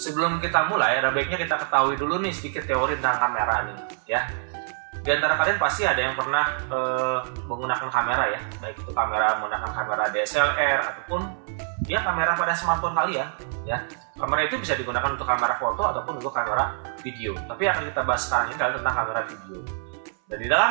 kita mulai ada baiknya kita ketahui dulu nih sedikit teori tentang kamera nih ya. Di antara kalian pasti ada yang pernah menggunakan kamera ya, baik itu kamera menggunakan kamera DSLR ataupun ya kamera pada smartphone kalian ya. Kamera itu bisa digunakan untuk kamera foto ataupun untuk kamera video. Tapi akan kita bahas sekarang ini adalah tentang kamera video. Dan di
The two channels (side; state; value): left; silent; 61 dB below the other